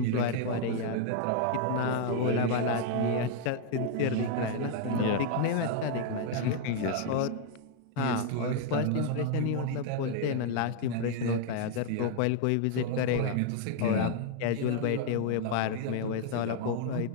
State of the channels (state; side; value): different; both; correlation 0.00